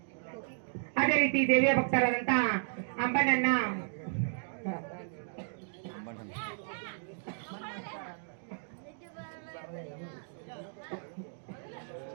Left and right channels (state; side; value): silent; left; digital silence